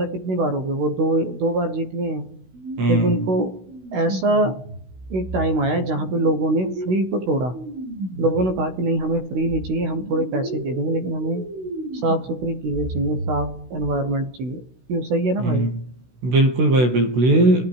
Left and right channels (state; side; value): late; left; 16 ms